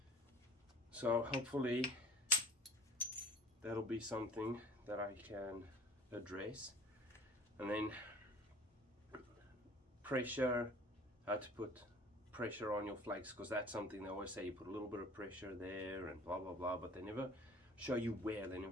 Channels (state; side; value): normal; both; correlation 0.49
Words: So hopefully that'll be something that I can address. And then pressure, how to put pressure on your flakes, because that's something they always say, you put a little bit of pressure there and blah blah blah, but they never show you where, they